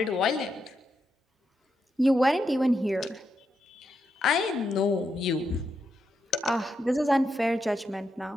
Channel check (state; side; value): normal; both; correlation 0.83